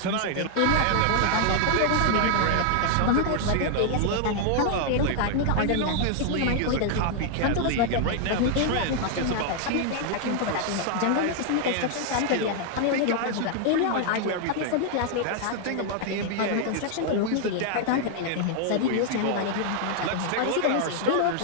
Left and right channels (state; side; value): different; both; correlation 0.00